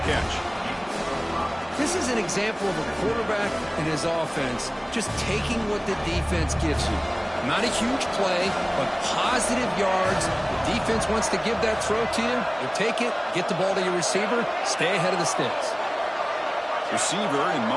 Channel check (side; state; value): both; identical; correlation 1.00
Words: catch. This is an example of a quarterback and his offense just taking what the defense gives you. Not a huge play, but positive yards. The defense wants to give that throw to you. You take it, get the ball to your receiver, stay ahead of the sticks. Receiver in